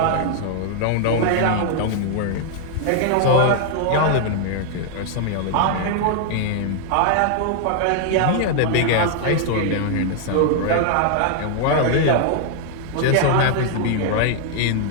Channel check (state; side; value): different; both; correlation 0.00